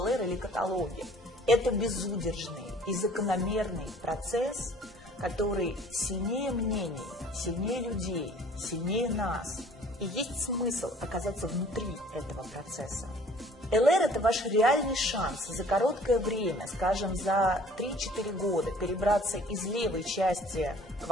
или каталоги. Это безудержный и закономерный процесс, который сильнее мнений, сильнее людей, сильнее нас. И есть смысл оказаться внутри этого процесса. ЛР – это ваш реальный шанс за короткое время, скажем, за 3-4 года, перебраться из левой части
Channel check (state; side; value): normal; both; correlation 0.53